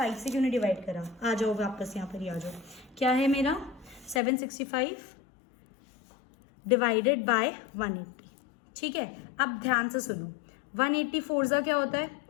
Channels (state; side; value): drops out; right; at 4.2 s